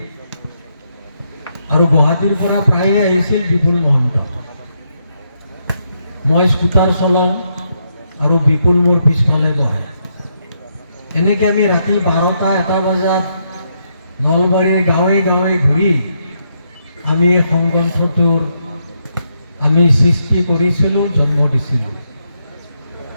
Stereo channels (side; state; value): both; inverted; correlation -0.78